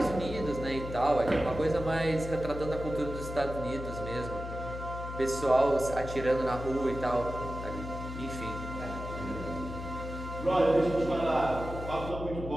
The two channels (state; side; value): noise; left; hum, 8 dB below the sound